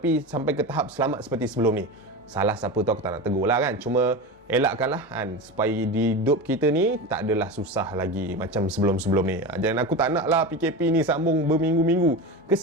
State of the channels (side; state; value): both; normal; correlation 0.25